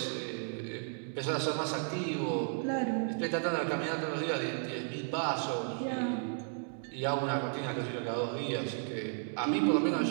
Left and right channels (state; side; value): silent; left; 55 dB below the other